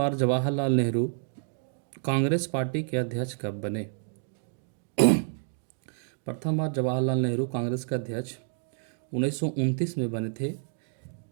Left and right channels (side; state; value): left; silent; 59 dB below the other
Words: जवाहरलाल नेहरू कांग्रेस पार्टी के अध्यक्ष कब बने? प्रथम बार जवाहरलाल नेहरू कांग्रेस के अध्यक्ष 1929 में बने थे,